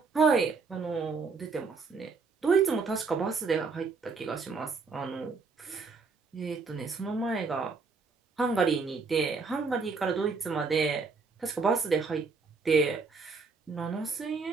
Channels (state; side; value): quieter; left; 4.6 dB